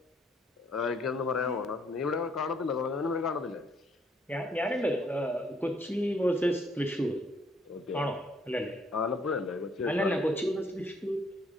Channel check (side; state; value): both; normal; correlation 0.66